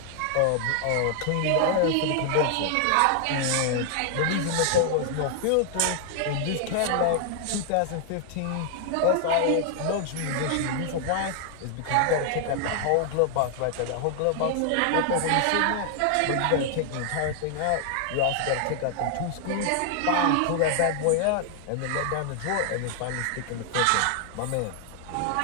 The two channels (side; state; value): both; different; correlation 0.00